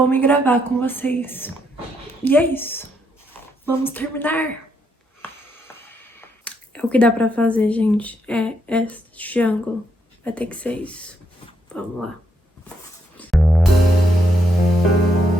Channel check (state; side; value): normal; both; correlation 0.76